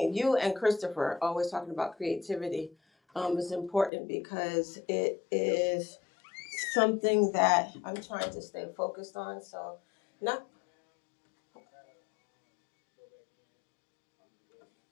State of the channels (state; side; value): drops out; right; at 3.9 s